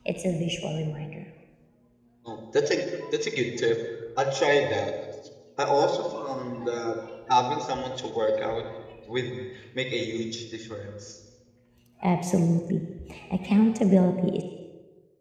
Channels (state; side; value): identical; both; correlation 1.00